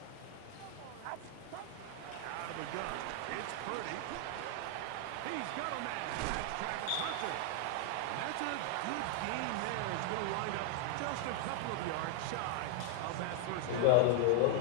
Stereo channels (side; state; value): both; different; correlation 0.00